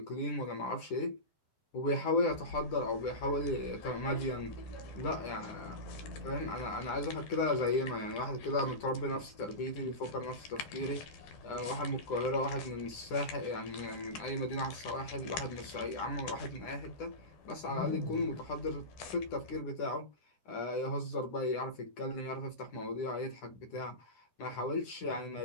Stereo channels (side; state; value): right; late; 9.9 ms